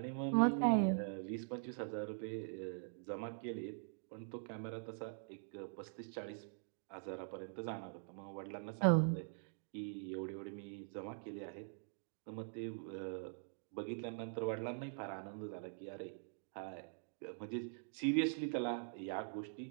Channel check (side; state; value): left; silent; digital silence